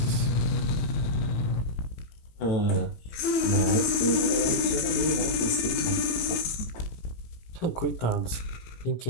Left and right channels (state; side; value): late; right; 18 ms